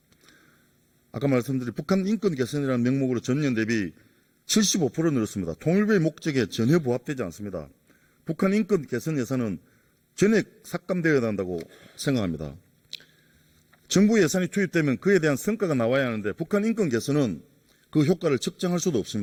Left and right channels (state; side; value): identical; both; correlation 1.00